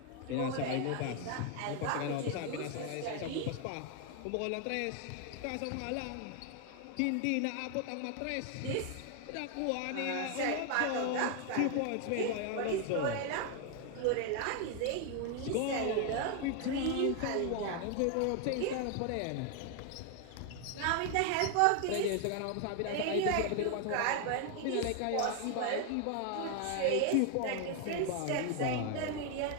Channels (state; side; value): different; both; correlation 0.00